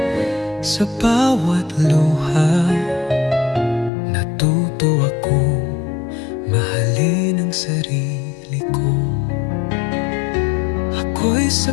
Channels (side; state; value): right; drops out; at 3.9 s